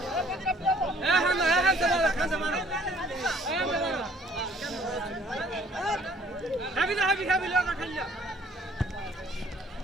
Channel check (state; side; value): normal; both; correlation 0.59